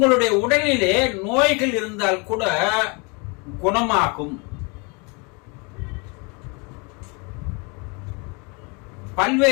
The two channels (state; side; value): quieter; right; 31.3 dB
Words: உடலிலே நோய்கள் இருந்தால் கூட குணமாகும்.